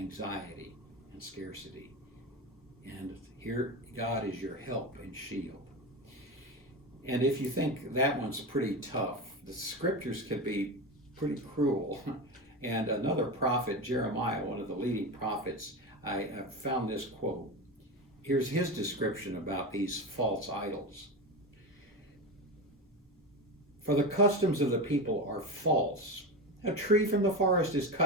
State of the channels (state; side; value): normal; both; correlation 0.21